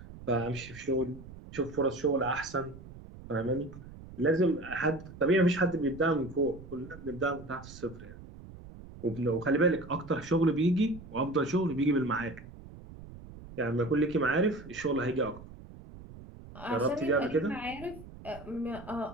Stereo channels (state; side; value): noise; right; rumble, 16 dB below the sound